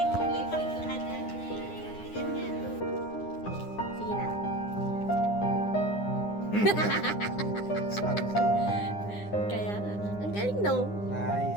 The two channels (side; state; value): right; late; 9.8 ms